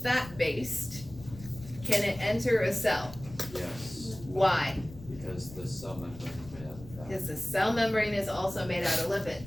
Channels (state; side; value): noise; left; rumble, 16 dB below the sound